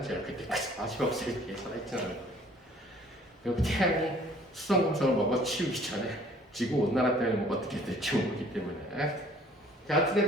그때까지 40억 살 뒤에 살아있지는 않을 거예요. 그리고 태양이 수성, 금성을 먹어 치우기 전에 지구 온난화 때문에 뭐 어떻게 될지 모르기 때문에. 자,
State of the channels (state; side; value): normal; both; correlation 0.55